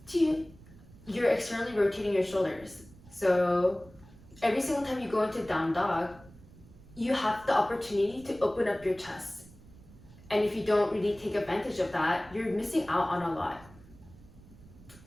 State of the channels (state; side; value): noise; right; rumble, 22 dB below the sound